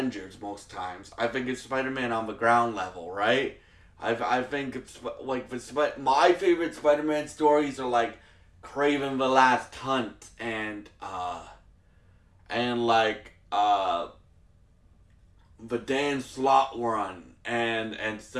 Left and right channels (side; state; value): both; identical; correlation 1.00